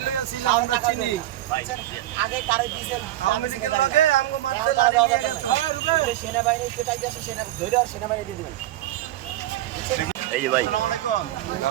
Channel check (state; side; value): quieter; left; 14.6 dB